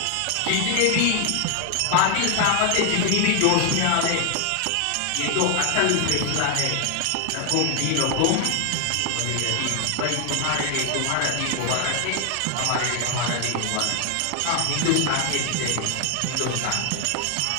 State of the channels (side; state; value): both; different; correlation 0.00